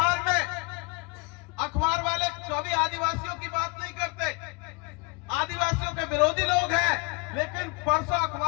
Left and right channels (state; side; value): quieter; right; 29.8 dB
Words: में, अखबार वाले कभी आदिवासियों की बात नहीं करते, आदिवासियों के विरोधी लोग हैं, लेकिन परसों